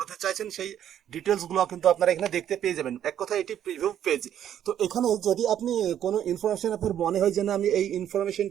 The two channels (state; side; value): quieter; left; 10.3 dB